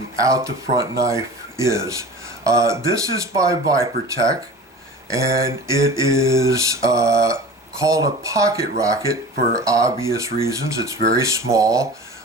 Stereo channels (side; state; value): both; normal; correlation 0.37